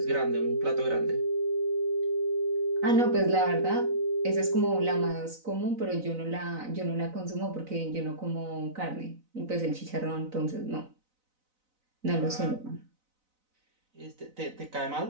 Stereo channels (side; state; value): left; late; 4.0 ms